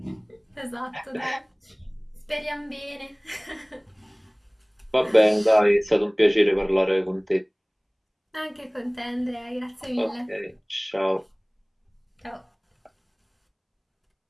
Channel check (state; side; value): identical; both; correlation 1.00